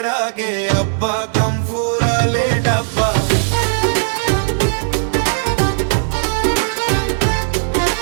আগে আব্বা কাম ফুরালে ডাব্বা।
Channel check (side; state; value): left; silent; 68 dB below the other